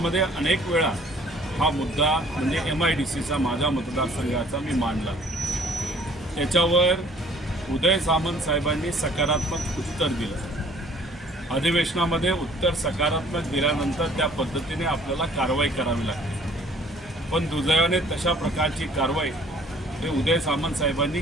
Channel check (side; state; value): both; normal; correlation 0.56